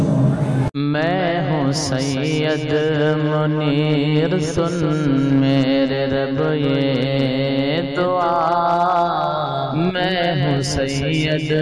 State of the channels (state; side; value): identical; both; correlation 1.00